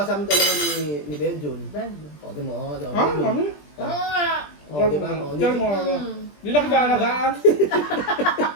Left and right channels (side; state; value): right; late; 20 ms